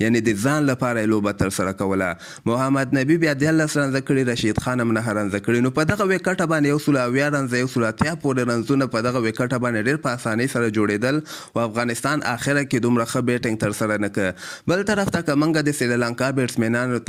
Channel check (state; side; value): identical; both; correlation 1.00